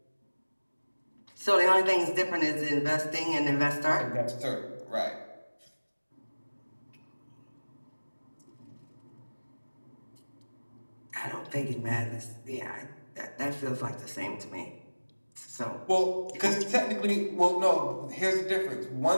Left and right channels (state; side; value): inverted; both; correlation -1.00